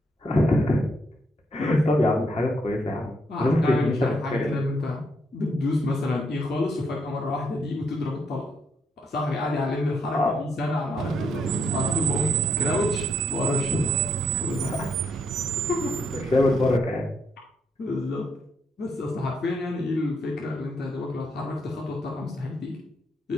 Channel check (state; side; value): normal; both; correlation 0.75